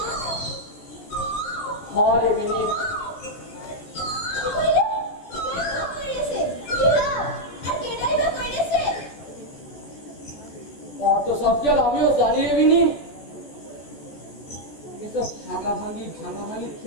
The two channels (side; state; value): right; late; 14 ms